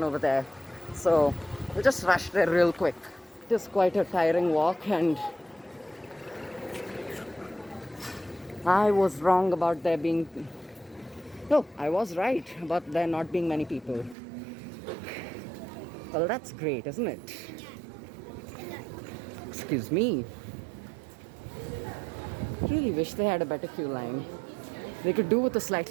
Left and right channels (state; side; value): drops out; left; at 14.2 s